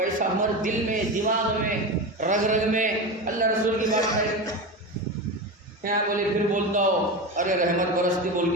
ہمارے دل میں، دماغ میں، رگ رگ میں. اللہ رسول کی بات ہے یہاں بولے پھر بولتا ہو ارے رحمت برستی بول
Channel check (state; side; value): normal; both; correlation 0.22